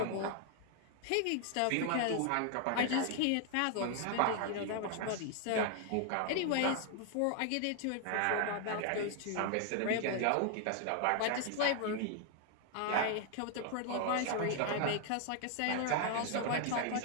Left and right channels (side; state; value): both; different; correlation 0.00